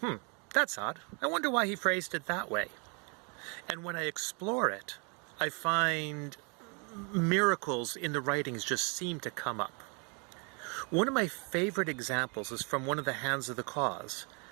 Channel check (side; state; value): left; quieter; 34.3 dB